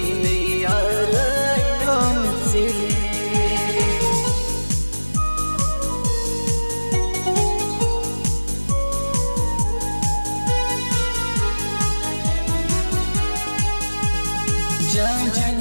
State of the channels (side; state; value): both; inverted; correlation -1.00